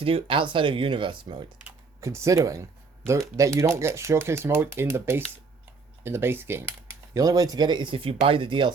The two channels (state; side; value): quieter; left; 4.5 dB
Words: do outside of Universe mode? Considering that you don't get Showcase mode in the base game. The only way to get it is if you buy the